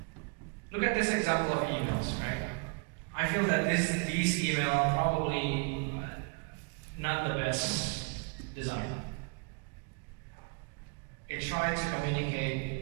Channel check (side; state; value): left; quieter; 33.9 dB